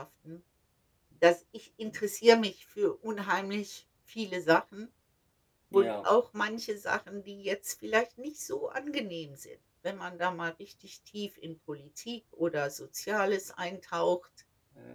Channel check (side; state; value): both; identical; correlation 1.00